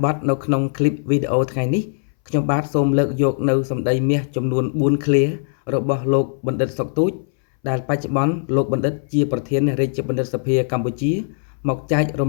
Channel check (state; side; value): silent; right; 63 dB below the other